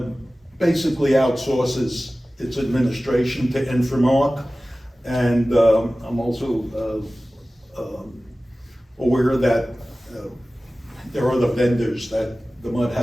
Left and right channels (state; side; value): normal; both; correlation 0.97